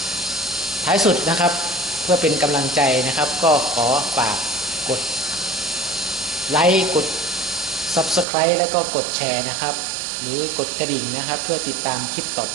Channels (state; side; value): drops out; left; at 8.2 s